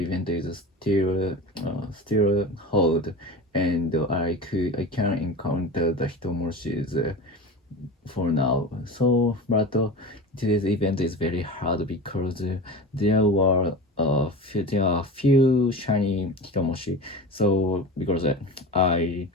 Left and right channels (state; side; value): normal; both; correlation 0.31